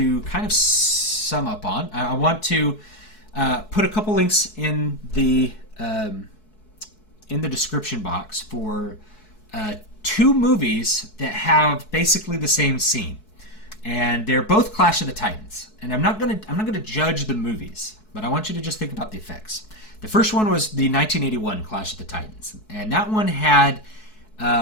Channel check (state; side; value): late; right; 4.7 ms